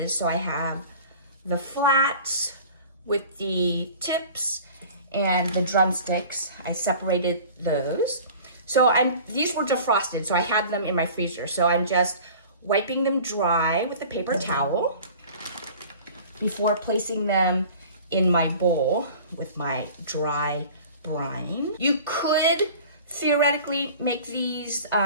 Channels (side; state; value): both; inverted; correlation -0.43